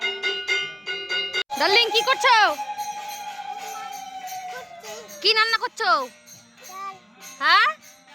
ডার্লিং কি করছো? কি রান্না করছো? হ্যাঁ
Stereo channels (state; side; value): identical; both; correlation 1.00